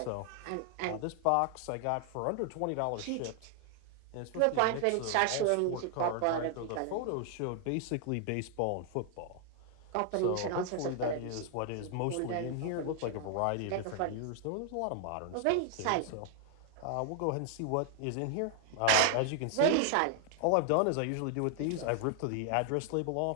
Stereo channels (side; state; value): both; different; correlation 0.00